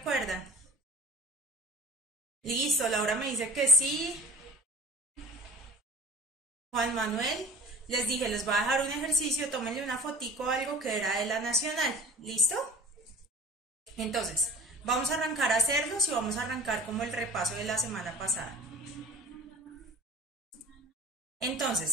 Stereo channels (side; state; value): both; normal; correlation 0.41